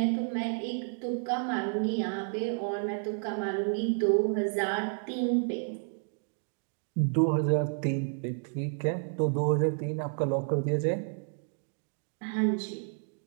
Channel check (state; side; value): silent; left; 57 dB below the other